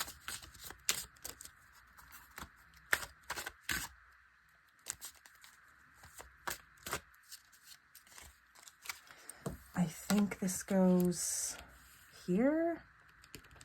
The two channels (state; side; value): identical; both; correlation 1.00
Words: I think this goes here.